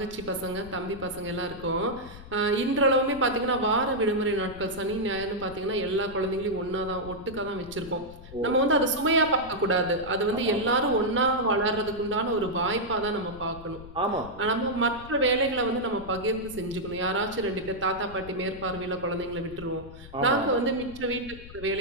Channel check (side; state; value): left; noise; rumble, 16 dB below the sound